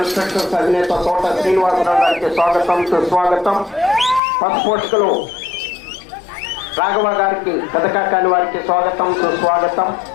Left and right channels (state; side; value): drops out; right; at 4.2 s